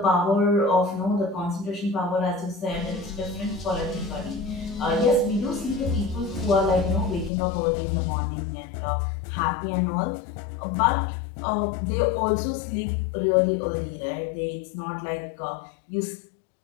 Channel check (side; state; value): right; drops out; at 7.3 s